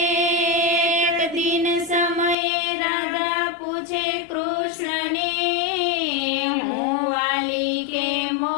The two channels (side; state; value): right; drops out; at 2.4 s